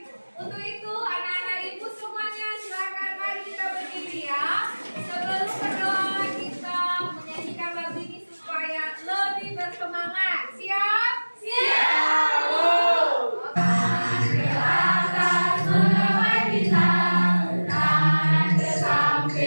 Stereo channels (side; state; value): both; inverted; correlation -1.00